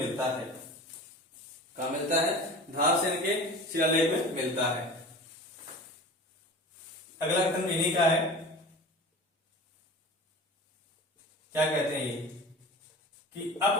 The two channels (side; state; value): both; normal; correlation 0.36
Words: है। कहा मिलता है, धारसेन के शिलालेख में मिलता है। अगला कथन इन्हीं का है, क्या कहते हैं ये कि